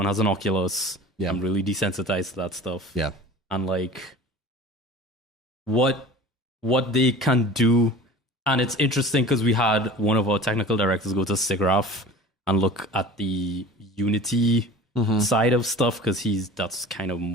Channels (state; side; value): normal; both; correlation 0.40